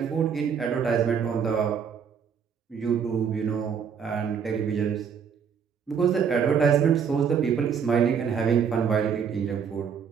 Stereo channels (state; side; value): quieter; left; 7.0 dB